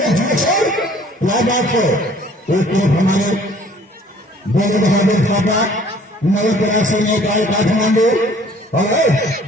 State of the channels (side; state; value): both; normal; correlation 0.55